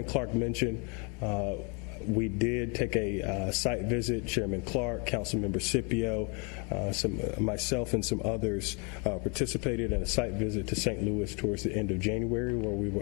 Clark mentioned, we did take a site visit. Chairman Clark, Councilmember Scipio, myself and some others participated in a site visit to St. Louis towards the end of January, where we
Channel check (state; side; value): quieter; right; 33.7 dB